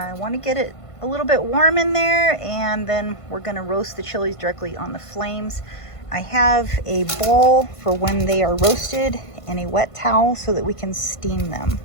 want to get it a little bit warm in there, and then we're going to roast the chilies directly on the flames. I have a bowl for when they are roasted and a wet towel so that we can steam them.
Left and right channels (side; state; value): right; late; 1.5 ms